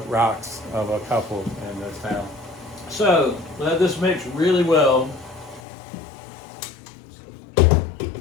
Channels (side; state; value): right; drops out; at 5.6 s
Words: rocks of a couple in this town. So let this mix really well.